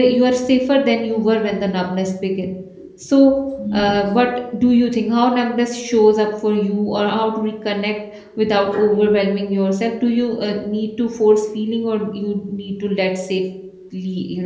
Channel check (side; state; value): both; identical; correlation 1.00